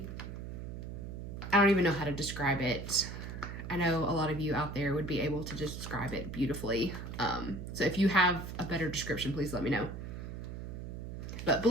I don't even know how to describe it. I know a lot of you out there would be able to describe it beautifully. So if you have a better description, please let me know. But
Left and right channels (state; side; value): noise; right; hum, 8 dB below the sound